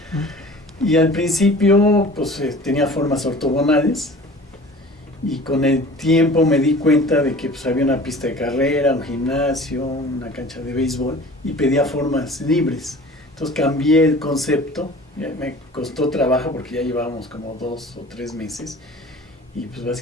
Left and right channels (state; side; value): normal; both; correlation 0.43